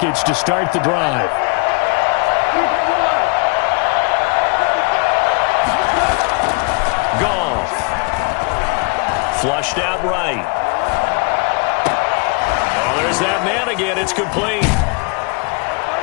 to start the drive. Goff. Flushed out right. Oh, there's that man again. It's complete.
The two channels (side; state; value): right; quieter; 31.2 dB